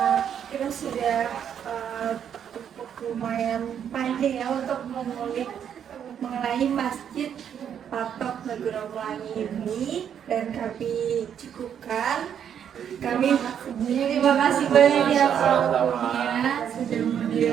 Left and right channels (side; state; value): left; quieter; 8.7 dB